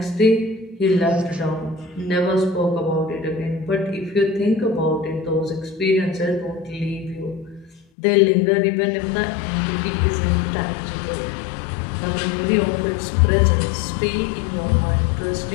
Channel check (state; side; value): drops out; right; at 7.9 s